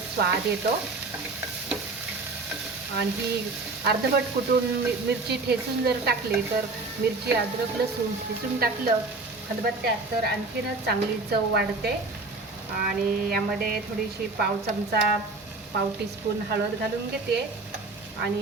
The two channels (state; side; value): quieter; left; 3.5 dB